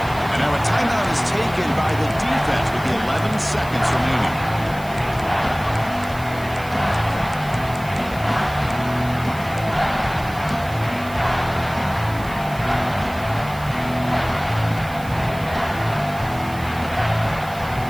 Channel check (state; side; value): noise; right; hiss, 19 dB below the sound